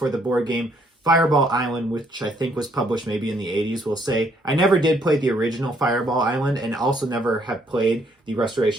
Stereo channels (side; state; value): both; normal; correlation 0.68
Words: the board game Fireball Island, which I think was published maybe in the 80s, we'll say. I never did play the original Fireball Island, and also never have played the